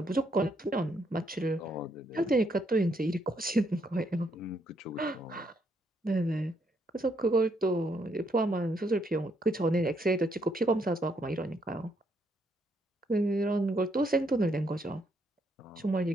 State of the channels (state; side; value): normal; both; correlation 0.74